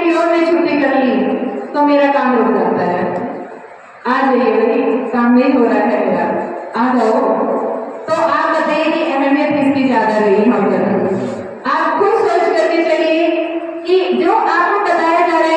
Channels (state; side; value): identical; both; correlation 1.00